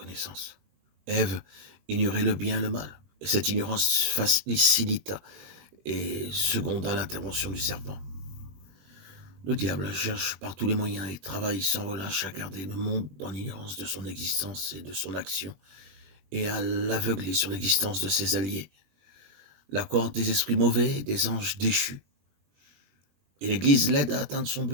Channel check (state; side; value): late; left; 21 ms